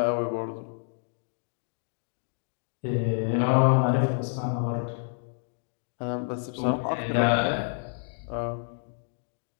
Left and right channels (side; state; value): right; silent; digital silence